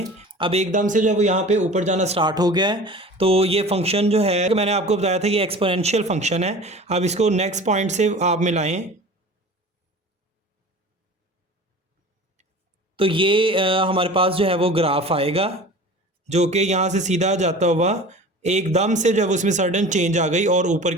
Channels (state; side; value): normal; both; correlation 0.39